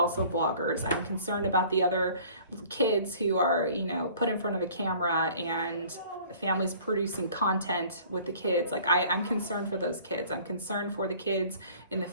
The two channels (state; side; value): inverted; both; correlation -0.51